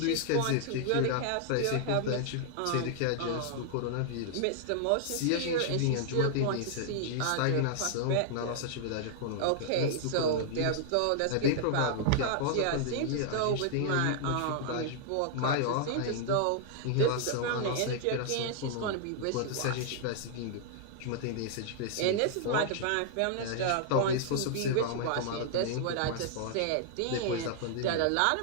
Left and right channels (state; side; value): different; both; correlation -0.01